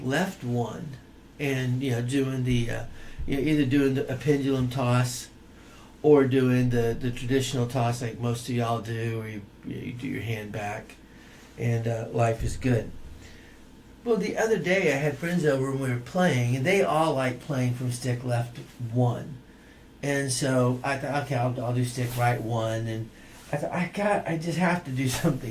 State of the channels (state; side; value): identical; both; correlation 1.00